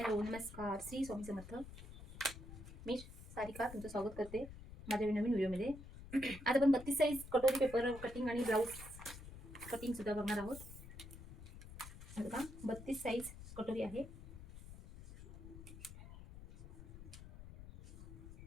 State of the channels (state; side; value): noise; left; rumble, 14 dB below the sound